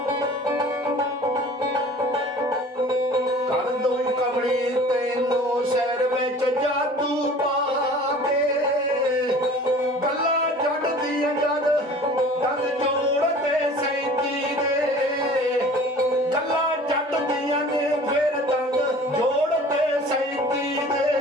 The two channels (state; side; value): normal; both; correlation 0.45